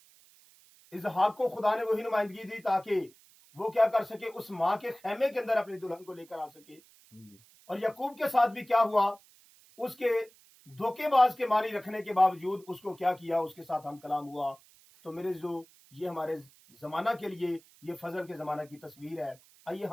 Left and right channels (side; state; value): right; noise; hiss, 27 dB below the sound